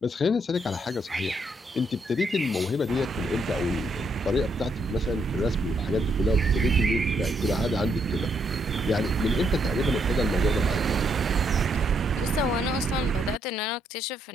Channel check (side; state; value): both; normal; correlation 0.75